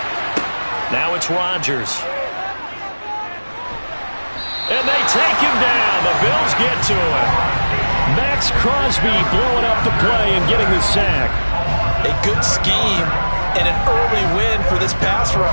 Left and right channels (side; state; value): both; inverted; correlation -1.00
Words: Now it's Rodgers. And they take him down. The Bills get to him. Max Crosby blowing up the play and getting the sack. A good scheme and an early win for this pass